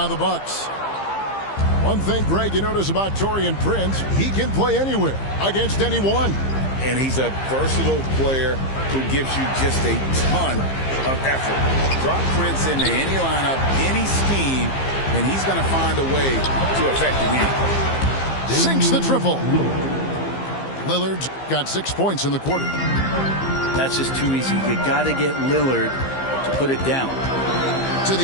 the Bucks. One thing, Greg, you notice about Taurean Prince, he can play anywhere against anyone. And he's a versatile player who gives you just a ton of effort. Drop Prince into any lineup, any scheme, and he's going to find a way to affect the game. Sinks the triple. Lillard's got 6 points in the quarter. That's just too easy. You got to get Lillard to put it down. To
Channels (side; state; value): right; late; 15 ms